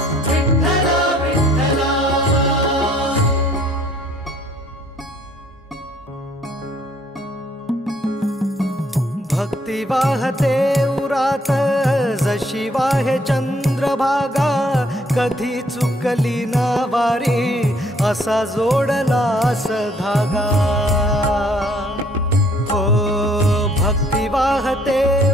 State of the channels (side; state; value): both; normal; correlation 0.63